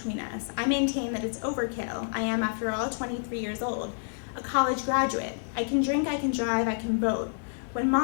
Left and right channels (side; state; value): right; silent; digital silence